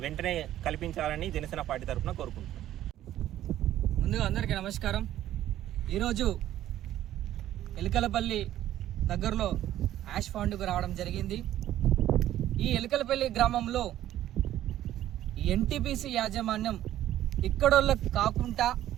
వెంటనే కల్పించాలని జనసేన పార్టీ తరఫున కోరుకుంటున్నాం. ముందుగా అందరికీ నమస్కారం. ఈరోజు ఎలికలపల్లి దగ్గరలో యాష్ ఫౌండ్కు రావడం జరిగింది. ఈ ఎలికలపల్లి గ్రామంలో ఎన్టీపీసీ యాజమాన్యం ఇక్కడోళ్ళకు కాకుండా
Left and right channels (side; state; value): left; quieter; 12.8 dB